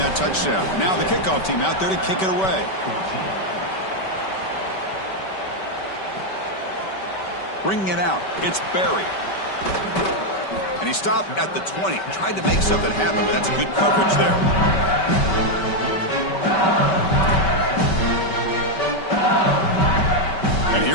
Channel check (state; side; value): late; right; 5.2 ms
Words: touchdown. Now the kickoff team out there to kick it away. Bringing it out, it's Barry. And he stopped at the 20. Tried to make something happen, but that's good coverage there. And